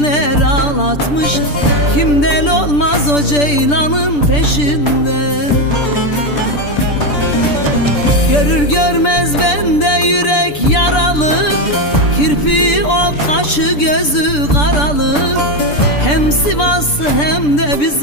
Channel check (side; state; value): right; late; 6.8 ms